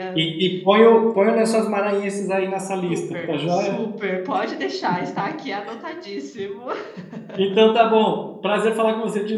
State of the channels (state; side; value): identical; both; correlation 1.00